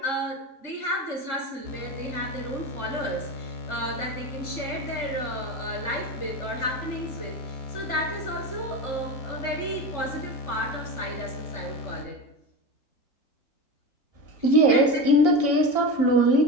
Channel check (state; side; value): late; right; 3.7 ms